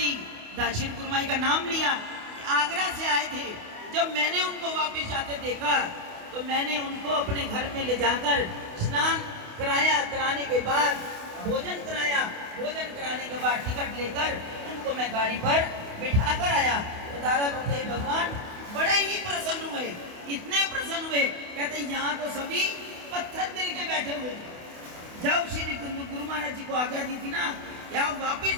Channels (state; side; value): late; left; 28 ms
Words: श्री गुरु महाराज का नाम लिया, आगरा से आए थे। जब मैंने उनको वापस जाते देखा तो मैंने उनको अपने घर में ले जाकर स्नान कराया, कराने के बाद भोजन कराया, भोजन कराने के बाद टिकट लेकर उनको मैं गाड़ी पर बिठा कर आया। तो दादा गुरुदेव भगवान बड़े ही प्रसन्न हुए, इतने प्रसन्न हुए, कहते यहाँ तो सभी पत्थर दिल के बैठे हुए। जब श्री गुरु महाराज जी को आज्ञा दी थी ना कि आप वापिस